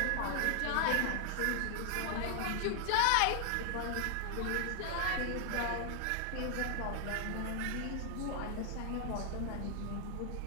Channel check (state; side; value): different; both; correlation 0.00